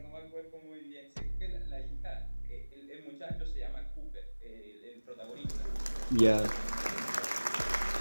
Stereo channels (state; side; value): inverted; both; correlation -1.00